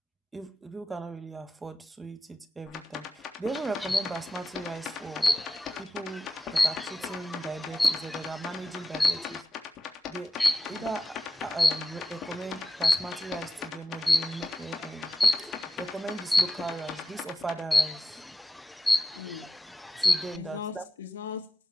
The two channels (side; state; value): both; normal; correlation 0.92